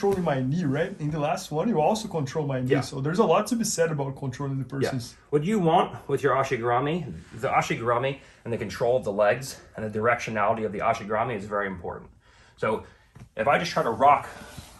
my knee, right? In the last one, you also control my knee. Yeah. So there's a lot to be said about controlling the person's. Yeah. What you want with your ashigarami, the ashigarami and the control of the legs and the directionality of the ashigarami is very important. So if I just try to rock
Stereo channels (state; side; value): identical; both; correlation 1.00